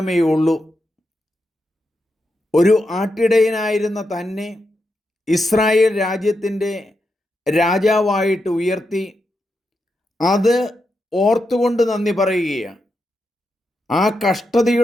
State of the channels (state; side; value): normal; both; correlation 0.86